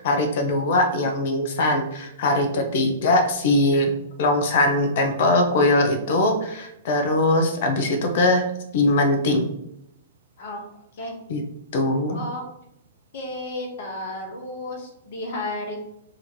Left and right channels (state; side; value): inverted; both; correlation -0.32